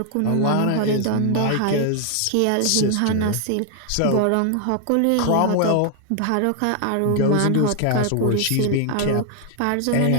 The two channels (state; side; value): different; both; correlation 0.00